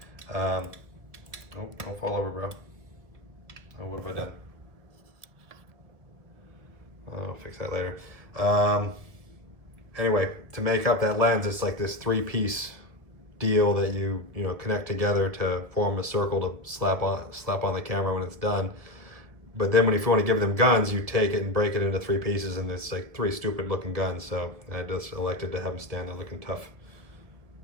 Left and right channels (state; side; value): late; left; 1.7 ms